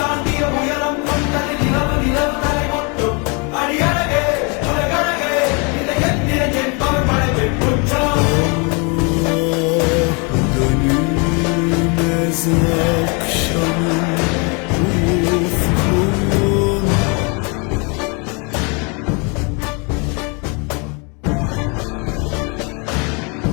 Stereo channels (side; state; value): right; quieter; 32.7 dB